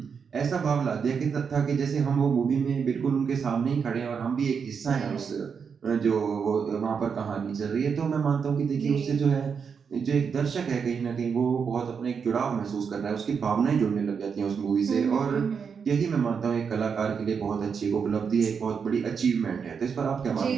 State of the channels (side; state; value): left; quieter; 6.3 dB